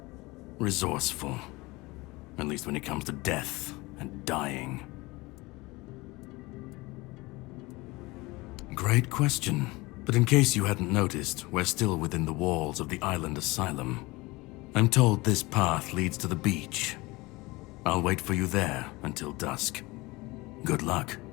resourceful. At least when it comes to death and dying. Great question. But in case you hadn't noticed, we're still within the walls of the island asylum. I'm told this path leads to the beach. I'll wait for you there until dusk. Good luck.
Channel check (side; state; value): right; quieter; 22.5 dB